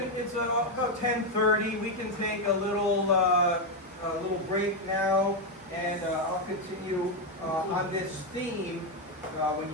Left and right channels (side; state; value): both; normal; correlation 0.05